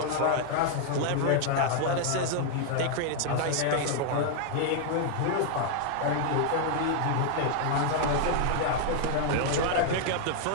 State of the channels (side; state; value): both; different; correlation 0.00